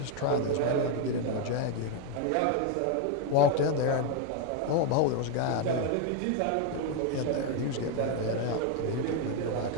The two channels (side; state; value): both; different; correlation 0.01